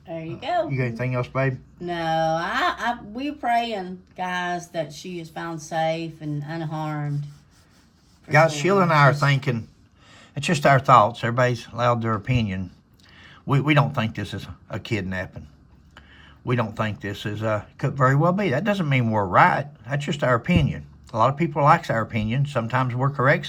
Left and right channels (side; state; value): both; identical; correlation 1.00